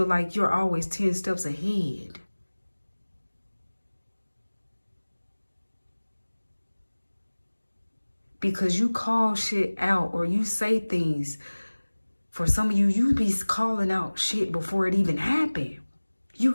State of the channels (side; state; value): both; inverted; correlation -1.00